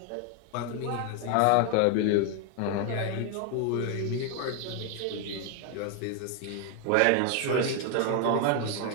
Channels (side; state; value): both; different; correlation 0.01